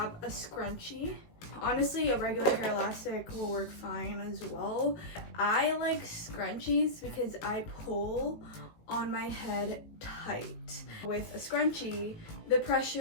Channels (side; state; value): right; late; 18 ms